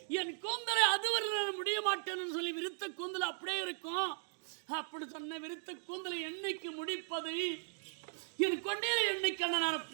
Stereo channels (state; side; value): silent; left; digital silence